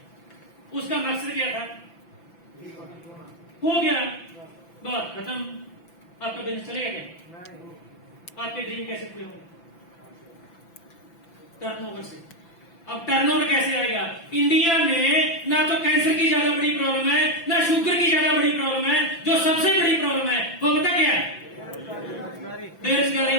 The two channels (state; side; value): late; right; 5.9 ms